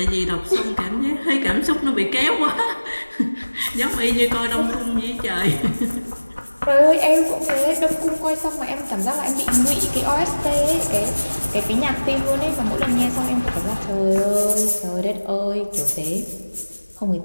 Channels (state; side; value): inverted; both; correlation -1.00